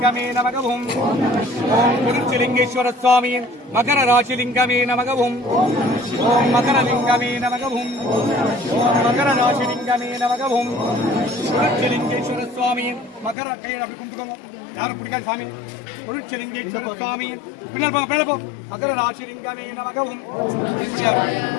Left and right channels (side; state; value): right; drops out; at 13.4 s